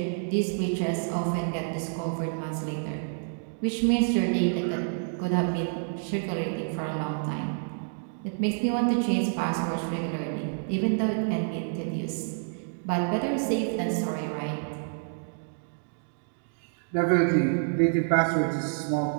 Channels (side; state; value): left; silent; digital silence